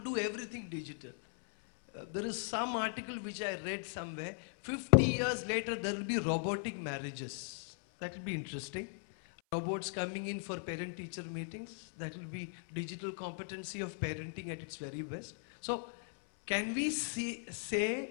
everything digital. There is some article which I read somewhere, 50 years later there will be robotic marriages. That will be interesting. Robots coming in for parent-teacher meetings. That will be digital competency of parenting at its very best. So, can we say,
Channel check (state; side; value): silent; right; 52 dB below the other